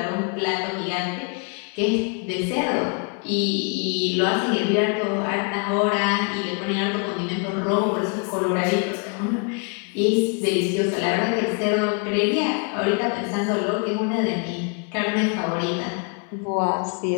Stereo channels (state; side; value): quieter; right; 36.7 dB